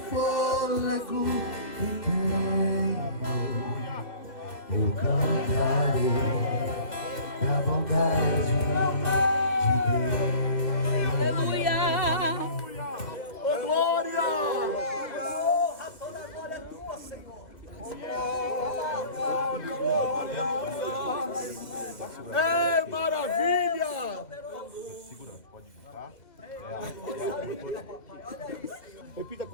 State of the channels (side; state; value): right; late; 2.0 ms